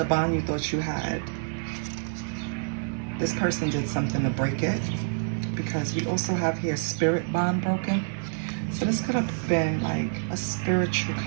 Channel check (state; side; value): silent; left; 60 dB below the other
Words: bond you thought you had, this person did something to break it, because we also have here spirit bond broken. So this could have been like a spiritual